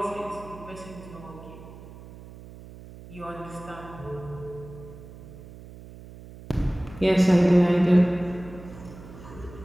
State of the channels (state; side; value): noise; right; hum, 17 dB below the sound